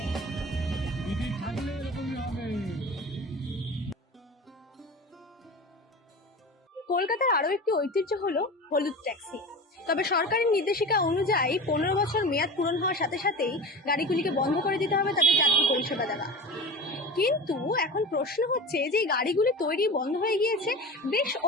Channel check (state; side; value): normal; both; correlation 0.32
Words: দিদি থাকলে এরকমই হবে। কলকাতার আরো একটি ঐতিহ্য হলো হলুদ ট্যাক্সি। তবে সরকারের নির্দেশিকা অনুযায়ী 15 বছর মেয়াদ পূরণ হওয়ার সাথে সাথেই গাড়িগুলিকে বন্ধ করে দিতে হবে তাদের যাত্রী পরিষেবা দেওয়া। কিন্তু এখন প্রশ্ন হচ্ছে যে এই গাড়িগুলি তৈরি বন্ধ হয়ে গিয়েছে বেশ